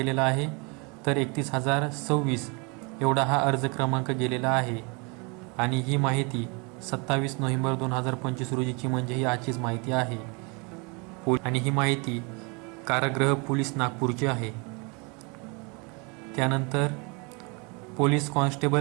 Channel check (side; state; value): left; quieter; 31.1 dB